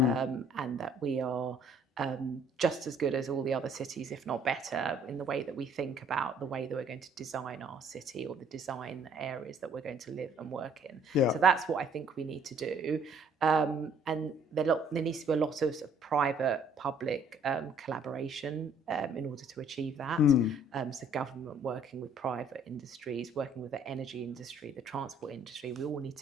that we are just as good as all the other cities, if not better, in the way that we think about the way that we're going to design our city, or the design areas that we're going to live and work in. Yeah. So that's what I think we need to do. And there needs to be a lot of, private-public collaboration in order to achieve that. So government working with private industries, working with the energy industry, the transport industry, we all need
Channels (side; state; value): both; normal; correlation 0.61